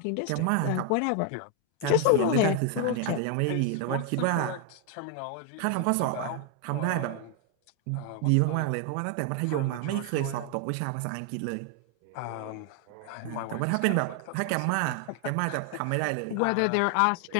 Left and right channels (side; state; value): both; different; correlation 0.01